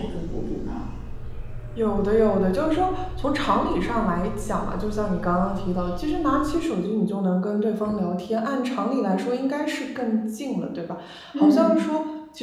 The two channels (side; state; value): both; identical; correlation 1.00